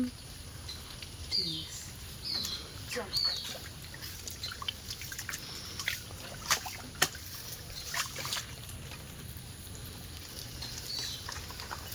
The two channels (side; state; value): both; identical; correlation 1.00